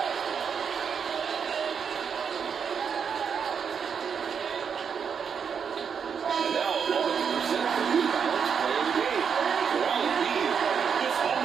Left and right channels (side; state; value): left; quieter; 6.8 dB